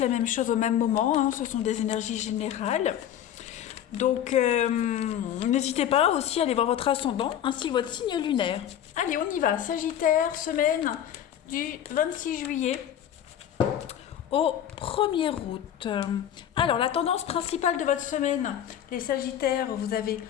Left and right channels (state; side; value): quieter; right; 10.4 dB